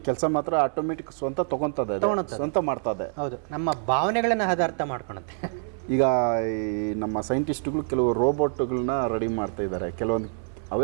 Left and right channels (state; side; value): silent; left; digital silence